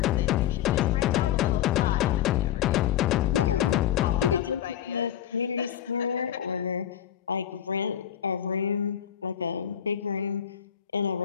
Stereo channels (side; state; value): right; quieter; 10.1 dB